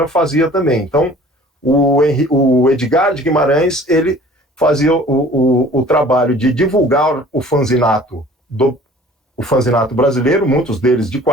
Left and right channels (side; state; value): both; normal; correlation 0.49